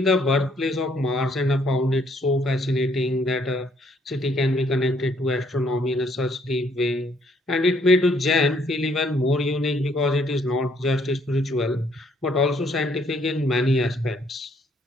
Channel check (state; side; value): normal; both; correlation 0.67